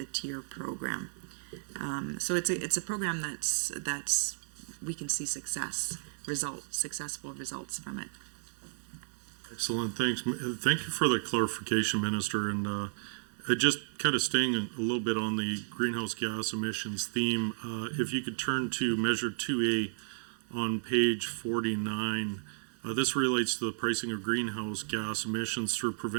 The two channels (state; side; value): silent; left; 56 dB below the other